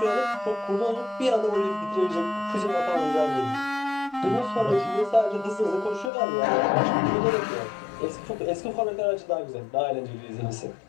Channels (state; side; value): drops out; right; at 6.1 s